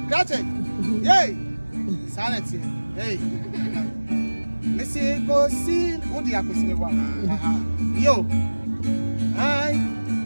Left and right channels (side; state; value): both; inverted; correlation -1.00